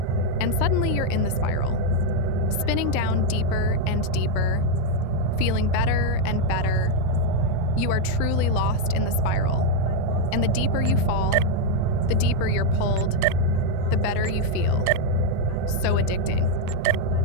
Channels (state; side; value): different; both; correlation 0.01